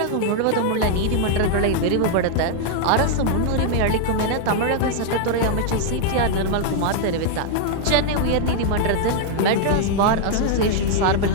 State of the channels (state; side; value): different; both; correlation 0.00